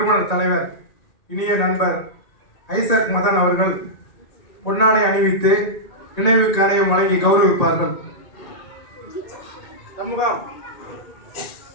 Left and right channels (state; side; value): late; right; 1.9 ms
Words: தலைவர் இனிய நண்பர் ஐசக் மதன் அவர்கள் பொன்னாடை அணிவித்து நினைவு கரையம் வழங்கி கௌரவிப்பார்கள். சண்முகம்.